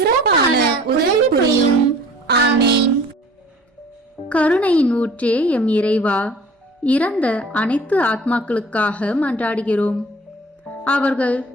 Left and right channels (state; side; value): normal; both; correlation 0.48